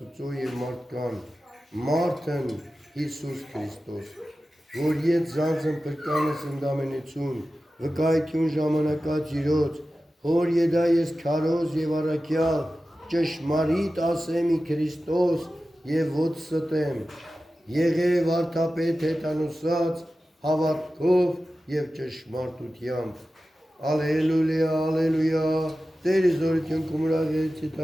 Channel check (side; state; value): both; normal; correlation 0.94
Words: և մարդկան, մարդն Հիսուս Քրիստոս, որ ետ զանձն պրկանս ընդամենություն, վկայություն ժամանակած իրոց, հոր եդա ես քարոզ և առաքյալ, ճշմարիտ ասեմի Քրիստոս և ոց ստեմ, եղև արդապետ հետանուսած, հավատքով և ճշմարտությամբ։ Ալելույա, ալելույա, Տերը զորություն կումրաղեցի